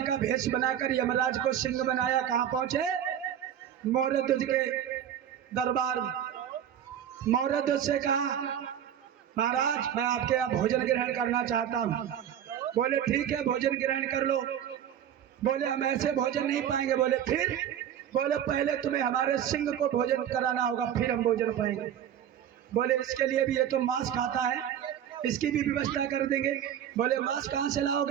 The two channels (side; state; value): left; quieter; 9.9 dB